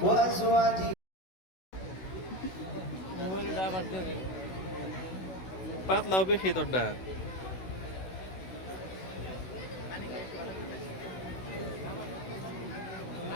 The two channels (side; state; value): right; late; 16 ms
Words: وأزواجه পাতলাও বেশি তোরটা